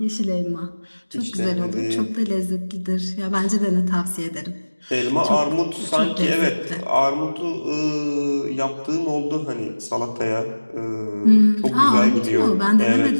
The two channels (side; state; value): both; inverted; correlation -1.00